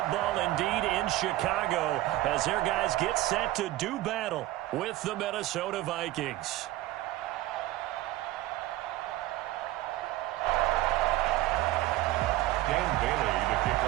indeed in Chicago as their guys get set to do battle with the Minnesota Vikings. Dan Bailey to kick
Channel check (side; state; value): left; quieter; 16.5 dB